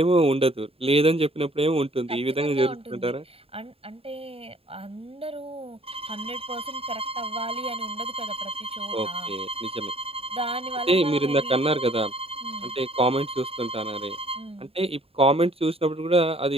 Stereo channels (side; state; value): left; late; 0.28 ms